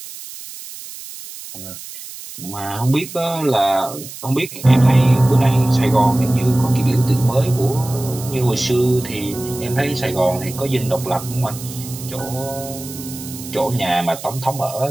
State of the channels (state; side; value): noise; right; hiss, 13 dB below the sound